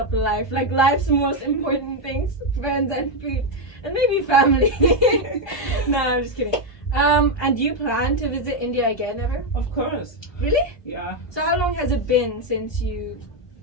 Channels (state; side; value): late; right; 1.2 ms